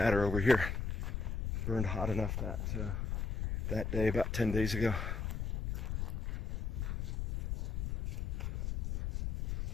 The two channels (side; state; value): left; noise; rumble, 2 dB below the sound